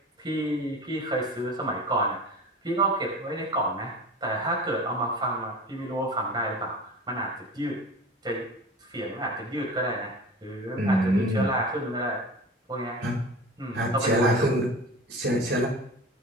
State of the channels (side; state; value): both; normal; correlation 0.35